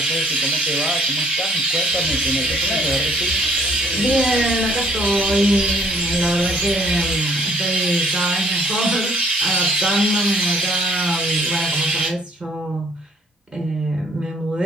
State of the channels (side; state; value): both; normal; correlation 0.61